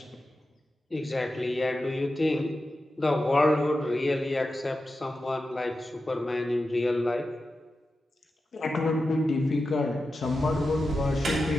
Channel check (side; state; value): both; normal; correlation 0.91